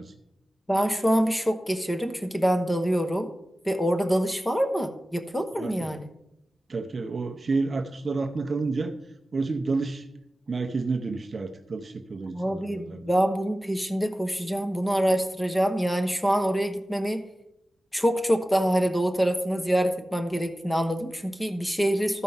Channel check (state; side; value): normal; both; correlation 0.95